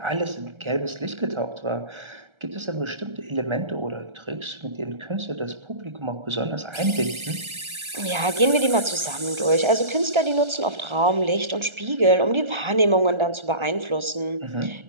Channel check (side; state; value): left; late; 1.3 ms